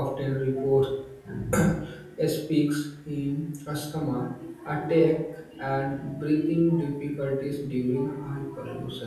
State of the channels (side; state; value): both; identical; correlation 1.00